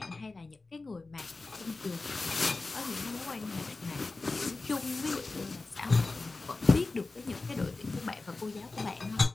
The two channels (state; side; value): quieter; right; 3.5 dB